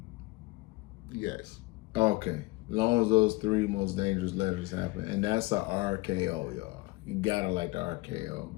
Yes. Okay. As long as those 3 most dangerous letters happen, and that's a RKO, y'all. You gotta like the RKO.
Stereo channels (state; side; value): quieter; right; 22.0 dB